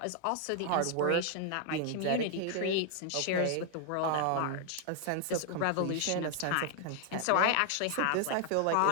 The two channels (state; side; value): different; both; correlation 0.00